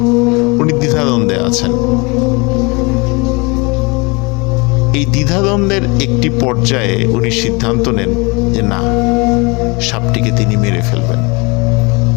উনি দ্বিধাদ্বন্দ্বে আছেন। এই দ্বিধাদ্বন্দ্বের একটি পর্যায়ে উনি সিদ্ধান্ত নেন যে না, সাপটিকে তিনি মেরে ফেলবেন।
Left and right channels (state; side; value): quieter; right; 27.9 dB